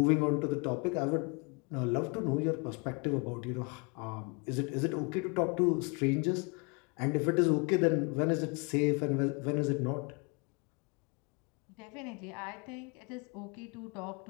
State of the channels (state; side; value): quieter; right; 31.8 dB